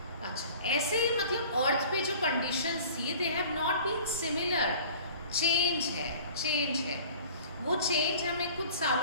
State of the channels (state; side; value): inverted; both; correlation -0.45